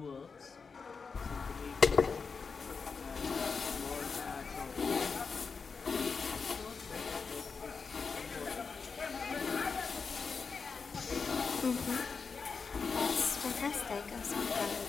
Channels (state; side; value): quieter; right; 5.2 dB